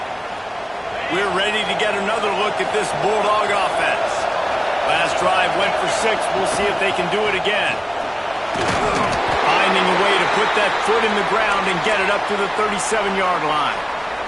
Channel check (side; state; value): both; identical; correlation 1.00